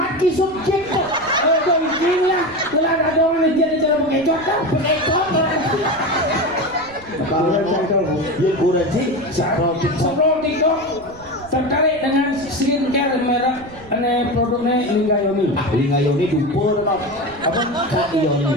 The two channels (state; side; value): noise; right; rumble, 22 dB below the sound